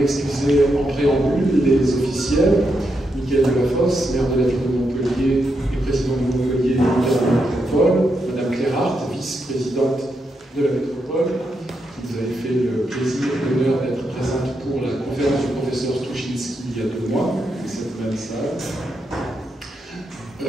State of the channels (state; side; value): normal; both; correlation 0.83